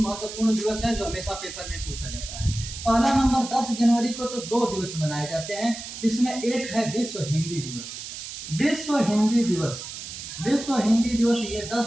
दिवस है जो हमेशा पेपर में पूछा जाता है। पहला नंबर 10 जनवरी को तो 2 दिवस मनाए जाते हैं। इसमें एक है विश्व हिंदी दिवस ये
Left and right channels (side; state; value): right; noise; hiss, 10 dB below the sound